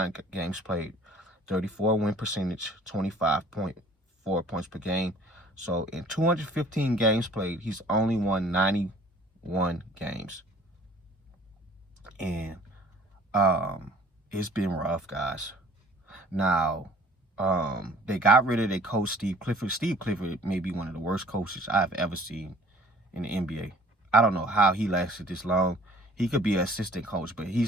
games played, 34 win percentage, 25.4 points per game. So in 215 games played, he's only won 91 games. And it's been rough, guys. Now, they got rid of their coach, Steve Clifford. Steve Clifford may be one of the worst coaches I've ever seen in the NBA. I don't know how he lasted this long. He could be an assistant coach, but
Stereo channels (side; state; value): both; normal; correlation 0.52